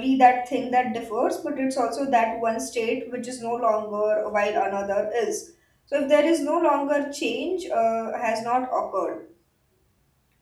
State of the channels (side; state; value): both; identical; correlation 1.00